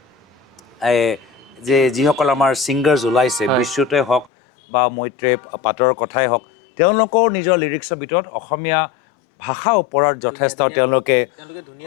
যিসকল আমাৰ ছিংগাৰ্ছ ওলাইছে বিশ্বতে হওক বা মৈত্ৰেয় পাটৰ কথাই হওক তেওঁলোকৰ নিজৰ লিৰিক্সৰ ভিতৰত অসমীয়া ভাষাৰ ওপৰত যথেষ্ট তেওঁলোকে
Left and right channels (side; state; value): right; drops out; at 4.3 s